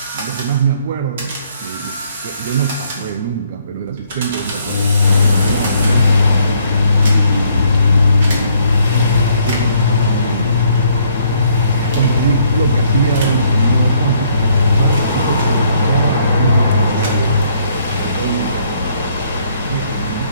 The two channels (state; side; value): inverted; both; correlation -0.68